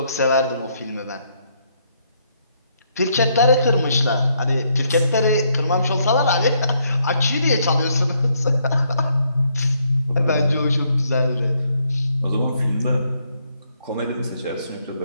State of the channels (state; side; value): inverted; both; correlation -0.73